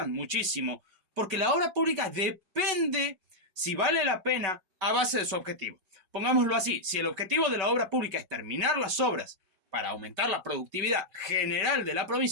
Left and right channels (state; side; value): late; left; 5.2 ms